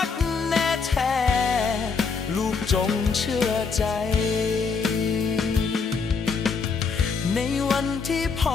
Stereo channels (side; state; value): right; quieter; 5.0 dB